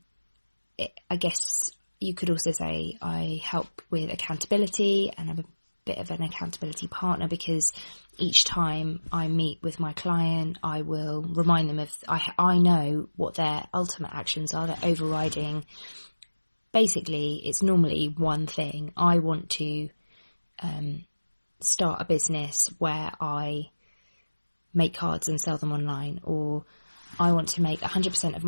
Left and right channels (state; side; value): inverted; both; correlation -1.00